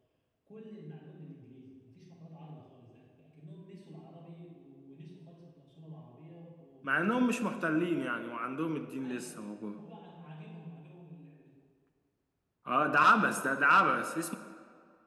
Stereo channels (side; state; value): both; identical; correlation 1.00